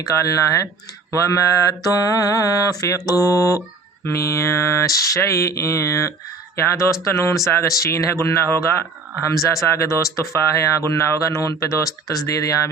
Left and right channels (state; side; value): quieter; left; 4.0 dB